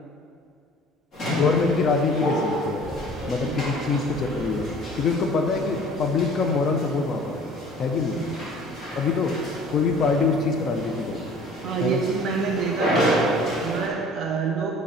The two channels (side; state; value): both; normal; correlation 0.48